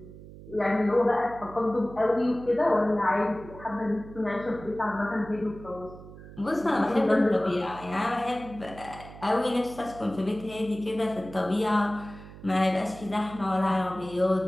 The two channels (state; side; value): noise; right; hum, 16 dB below the sound